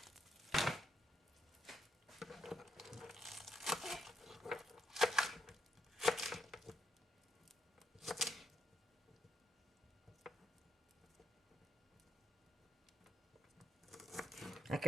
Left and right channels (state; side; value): normal; both; correlation 0.80